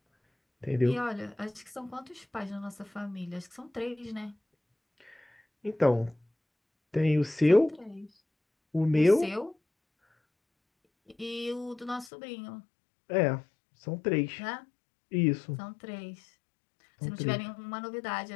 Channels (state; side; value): drops out; right; at 12.1 s